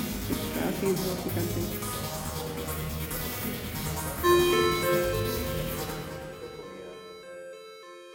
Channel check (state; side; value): identical; both; correlation 1.00